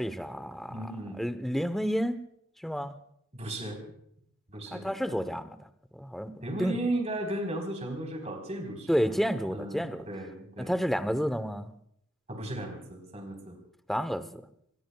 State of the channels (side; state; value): both; normal; correlation 0.89